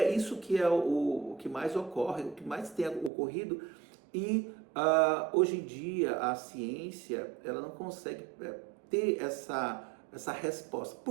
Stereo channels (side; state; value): left; drops out; at 3.1 s